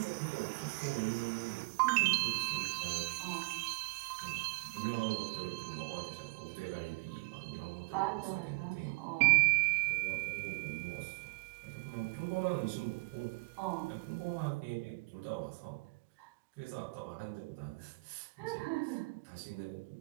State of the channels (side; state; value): left; quieter; 27.8 dB